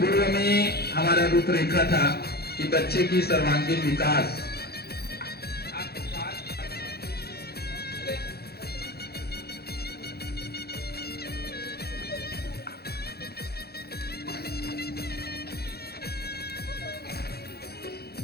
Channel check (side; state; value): right; late; 0.46 ms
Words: में हमारा रूपरेखा था कि बच्चे की सर्वांगीण विकास।